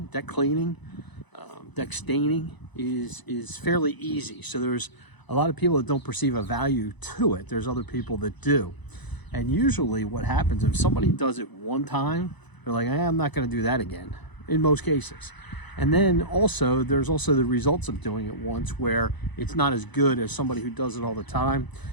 deck cleaning, deck staining is fairly easy. So there's a lot of people that don't perceive a value to it. There's other people that do. And usually what happens, if somebody does it one time, they're like, I'm not going to do that again, in most cases. And then also, there's also the results of doing it once where it's not as good as somebody who does it all the time.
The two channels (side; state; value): right; late; 1.0 ms